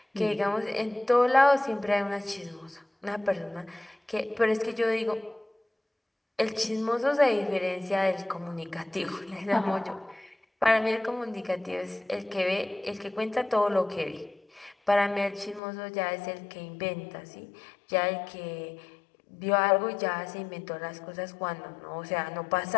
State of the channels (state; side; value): drops out; right; at 15.6 s